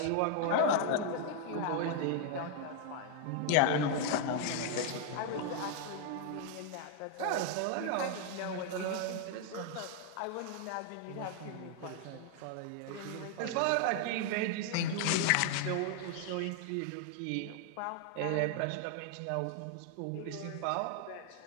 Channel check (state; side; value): different; both; correlation 0.00